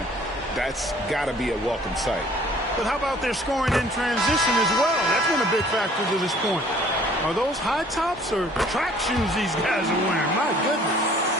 That's got to be a welcome sight. But how about their scoring in transition as well? That's been a big factor to this point. Are those high tops or track shoes these guys are wearing? My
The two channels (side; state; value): both; normal; correlation 0.55